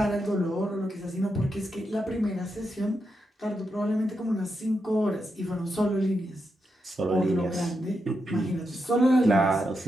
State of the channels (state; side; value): normal; both; correlation 0.85